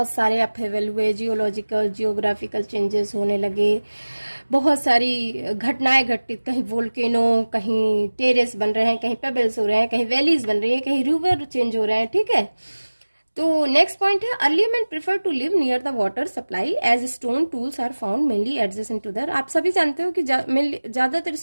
सारे अपहेवल हुए, जियोलॉजिकल जियोग्राफिकल चेंजेस होने लगे, बहुत सारी घटनाएं घटित, कहीं वोल्केनो, कहीं टेरेस बन रहे हैं, कहीं पेबल्स हो रहे हैं, कहीं वैलीज बन रही हैं, कहीं रिवर चेंज हो रहे हैं। ठीक है, तो नेक्स्ट पॉइंट है early man prefer to live near the water supply as stone tools are found mainly adjacent to there. आप सभी जानते हो कि ज्यादातर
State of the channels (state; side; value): inverted; both; correlation -1.00